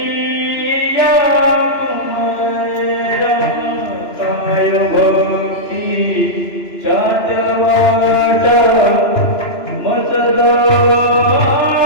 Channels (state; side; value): late; right; 2.9 ms